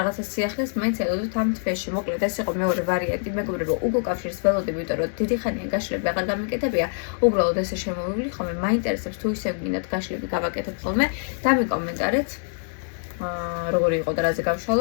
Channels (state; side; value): silent; right; 62 dB below the other